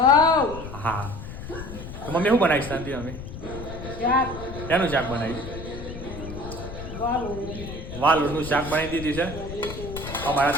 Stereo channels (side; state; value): left; noise; rumble, 10 dB below the sound